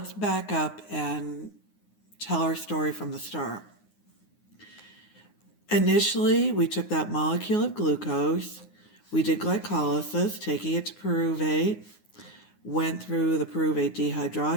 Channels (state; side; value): late; right; 9.6 ms